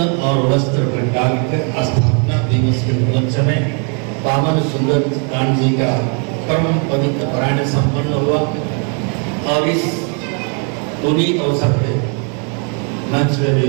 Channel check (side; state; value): left; quieter; 37.9 dB